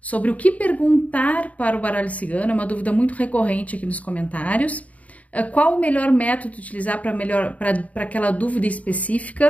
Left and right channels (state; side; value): late; right; 0.069 ms